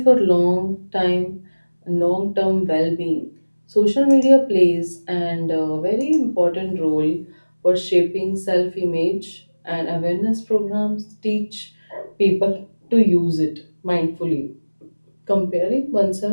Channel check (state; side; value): inverted; both; correlation -1.00